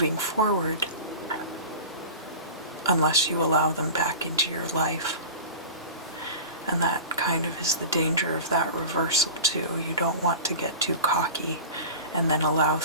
forward unless you allow them back into your life. And that kind of is the danger of that reversal too. You don't want to get too cocky and then allow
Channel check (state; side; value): inverted; both; correlation -0.34